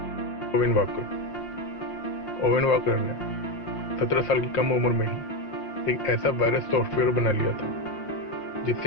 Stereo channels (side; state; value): right; late; 5.6 ms